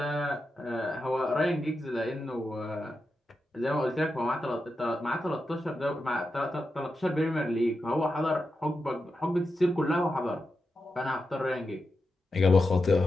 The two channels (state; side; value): normal; both; correlation 0.89